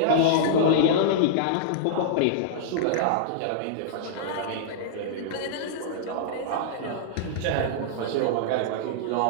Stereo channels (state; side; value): different; both; correlation -0.02